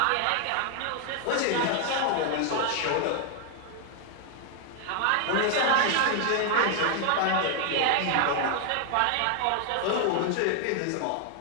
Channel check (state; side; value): different; both; correlation 0.00